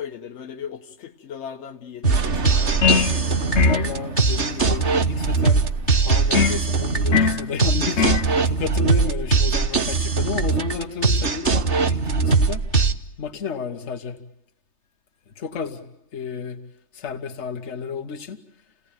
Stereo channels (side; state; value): right; late; 3.3 ms